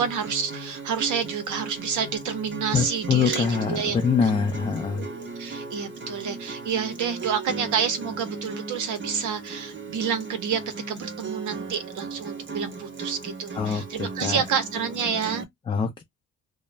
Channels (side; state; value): both; normal; correlation 0.24